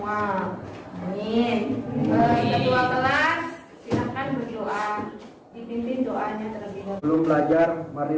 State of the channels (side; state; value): both; identical; correlation 1.00